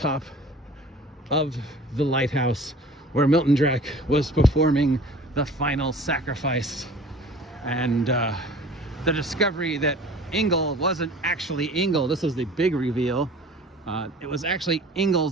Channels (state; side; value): normal; both; correlation 0.45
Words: of the lighthouse where Milton Drack was performing the final sacrifice. And the discovery that Engel wasn't actually Engel. This was the big reveal. It was actually